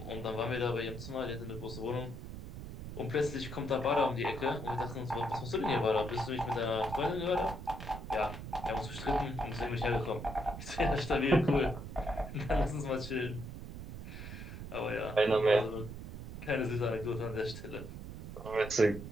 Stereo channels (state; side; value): noise; right; rumble, 10 dB below the sound